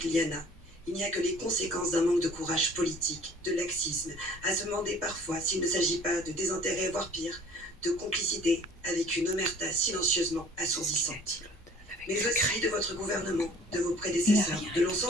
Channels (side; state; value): both; normal; correlation 0.51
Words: Liana. Il n'y a que les conséquences d'un manque de courage politique, de laxisme, à se demander parfois s'il ne s'agit pas de désintérêt, voire pire, de complicité avec une omerta silencieusement assourdissante. Mais aussi de votre gouvernement, de vos prédécesseurs, de